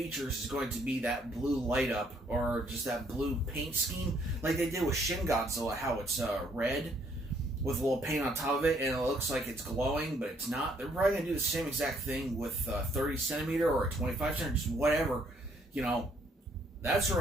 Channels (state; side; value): normal; both; correlation 0.67